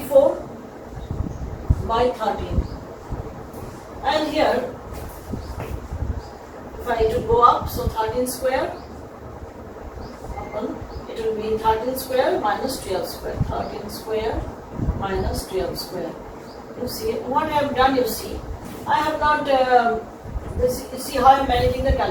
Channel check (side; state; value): both; identical; correlation 1.00